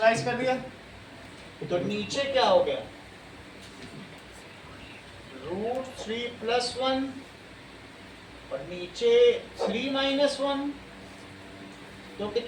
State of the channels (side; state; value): both; identical; correlation 1.00